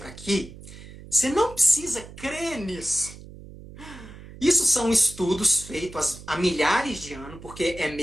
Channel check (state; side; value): noise; right; hum, 16 dB below the sound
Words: aqui, você não precisa crer nisso. Isso são estudos feitos há milhares de anos, porque é